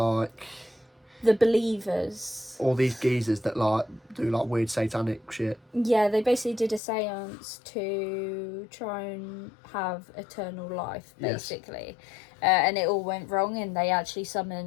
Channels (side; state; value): right; drops out; at 6.8 s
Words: the believers. All these geezers that do weird satanic shit. Yeah, they basically did a seance to try and have eternal life, basically. Yes. And it all went wrong, and they actually